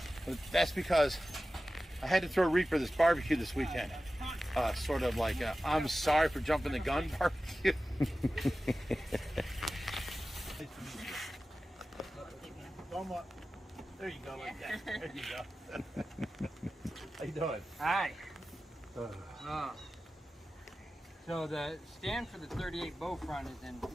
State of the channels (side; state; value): both; normal; correlation 0.95